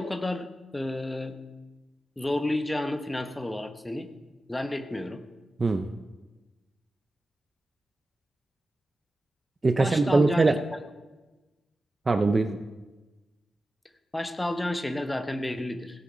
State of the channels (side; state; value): both; normal; correlation 0.93